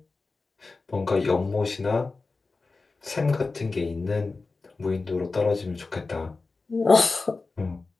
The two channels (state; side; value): quieter; right; 3.8 dB